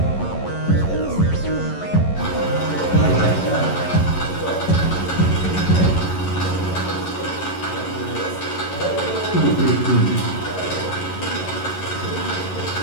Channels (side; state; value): right; late; 11 ms